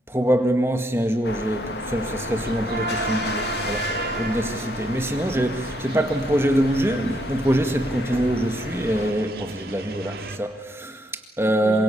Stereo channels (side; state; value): both; normal; correlation 0.75